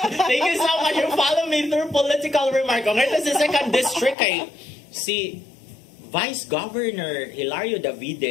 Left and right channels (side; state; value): right; drops out; at 4.2 s